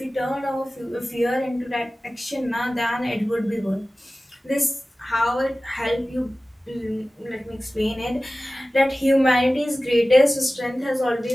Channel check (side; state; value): both; normal; correlation 0.96